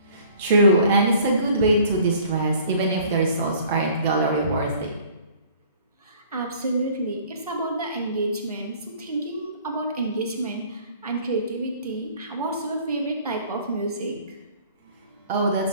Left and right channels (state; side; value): inverted; both; correlation -0.53